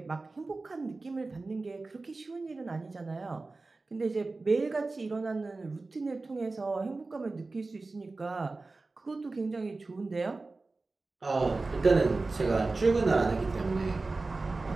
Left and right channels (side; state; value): left; quieter; 3.5 dB